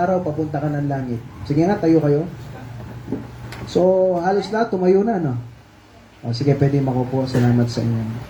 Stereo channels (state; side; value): identical; both; correlation 1.00